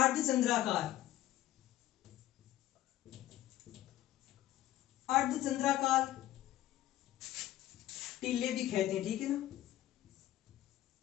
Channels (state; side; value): quieter; right; 14.0 dB